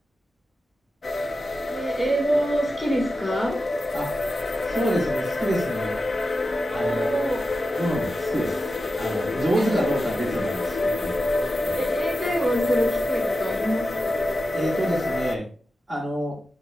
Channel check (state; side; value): normal; both; correlation 0.91